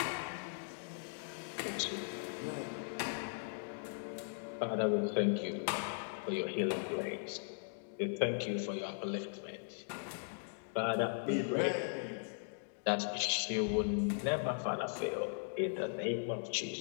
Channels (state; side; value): silent; right; digital silence